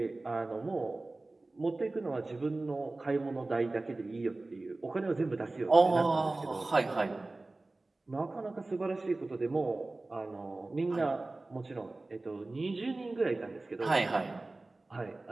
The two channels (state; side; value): quieter; left; 3.1 dB